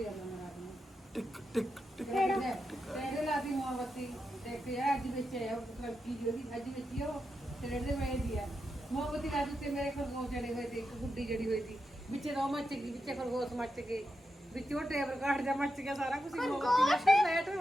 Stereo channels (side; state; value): both; normal; correlation 0.87